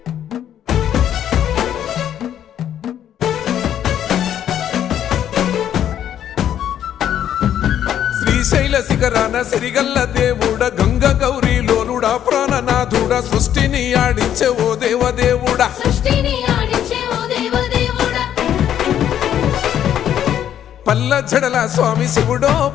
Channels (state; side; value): quieter; right; 10.3 dB